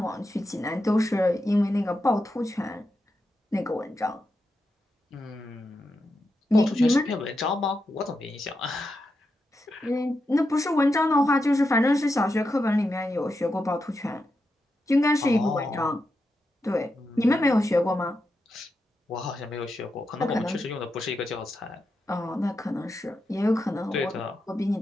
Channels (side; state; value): both; normal; correlation 0.87